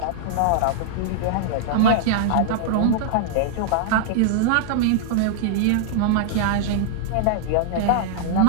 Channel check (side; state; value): both; different; correlation -0.01